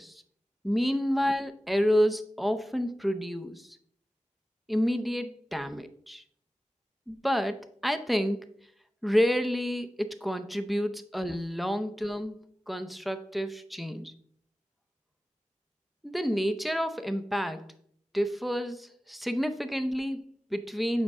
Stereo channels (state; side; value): normal; both; correlation 0.95